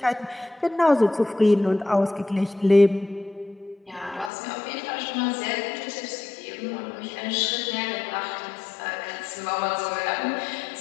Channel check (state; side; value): drops out; right; at 4.3 s